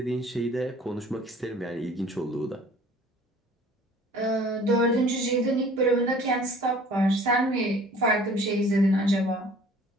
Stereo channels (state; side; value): normal; both; correlation 0.51